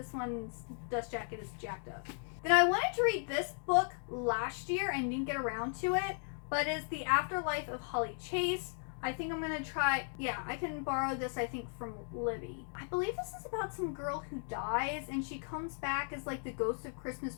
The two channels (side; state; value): right; silent; 54 dB below the other